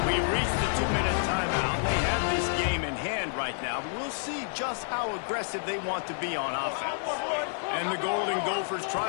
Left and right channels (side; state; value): right; silent; digital silence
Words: We reached the 2-minute timeout. They have this game in hand right now, but we'll see just how aggressive they want to be on offense. And the Golden Gophers